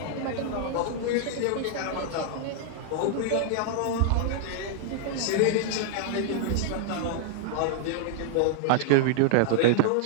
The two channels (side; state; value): both; different; correlation -0.01